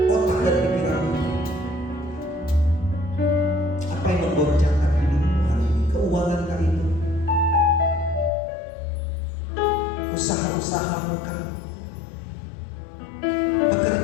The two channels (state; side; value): drops out; right; at 8.3 s